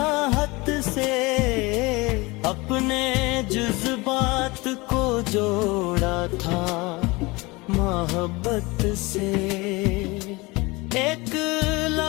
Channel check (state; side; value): quieter; right; 23.9 dB